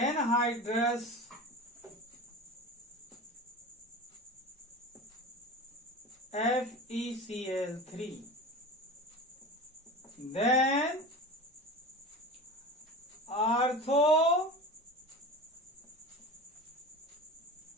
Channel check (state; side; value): normal; both; correlation 0.32